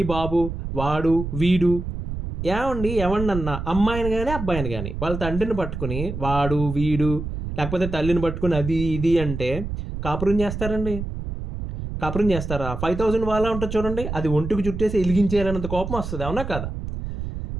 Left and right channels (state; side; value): noise; right; rumble, 6 dB below the sound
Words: బాబు, వాడు, వీడు, ఎవరినన్నా అమ్మాయిని కానీ అబ్బాయిని కానీ వాళ్ళ తండ్రిని పట్టుకుని వాడు, వీడు, లేకపోతే తల్లిని పట్టుకుని అది ఇది అంటే కాపురం చేస్తారండి? కాపురం చేస్తారా? 5,000 వాళ్ళ ఉంటుంది చూడండి, అది ఒంటికి చుట్టేసి ఎలిగించేయాలన్నంత కోపం వస్తుంది, అవునా కదా?